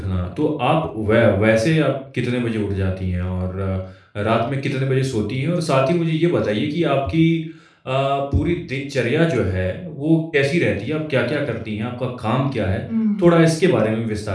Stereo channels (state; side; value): identical; both; correlation 1.00